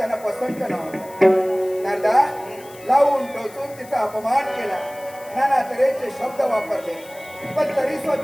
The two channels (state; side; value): noise; left; hiss, 21 dB below the sound